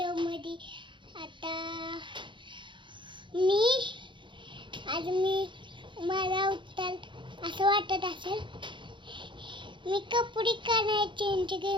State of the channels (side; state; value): left; late; 0.23 ms